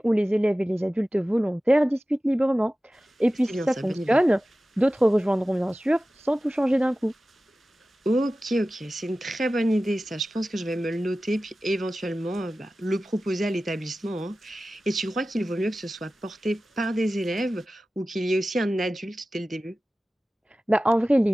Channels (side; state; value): both; normal; correlation 0.95